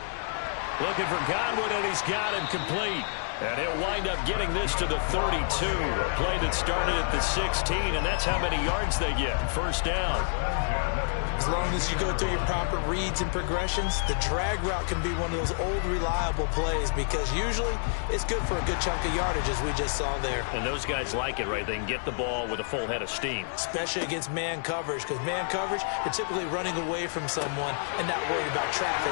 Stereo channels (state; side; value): silent; right; 59 dB below the other